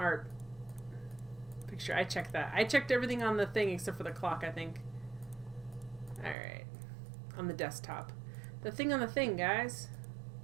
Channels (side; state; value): left; drops out; at 6.4 s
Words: picture. I checked that. I checked everything on the thing except for the clock, I think. Alright. On the desktop. The thing on the thing, guys.